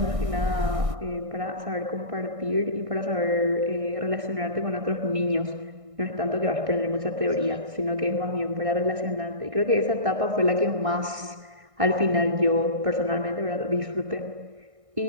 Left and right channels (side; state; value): left; late; 1.6 ms